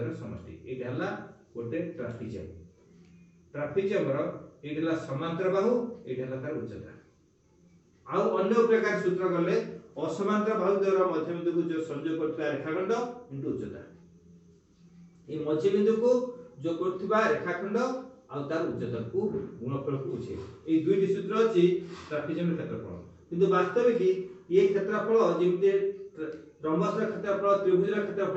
समष्टि एटा हला गोटे ट्राफिजम रो एटा समांतर बाहु एटा हला तार उच्चता आ अन्य प्रकार सूत्र गले असमांतर बाहुद्वयर मध्य बिंदु को जो संयोग करथला रेखाखंड इनटू उच्चता ए मध्य बिंदु को जो करथबा रेखाखंड आ तार उच्चता को गुणफल को उछे ए दुईटी सूत्र अछि ट्राफिजम क्षेत्रफल किंतु वास्तविक कि ये क्षेत्रफल जेमते रंबस क्षेत्रफल त्रिभुज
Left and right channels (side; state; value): both; identical; correlation 1.00